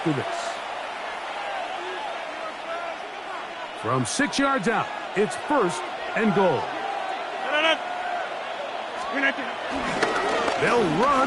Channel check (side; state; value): both; identical; correlation 1.00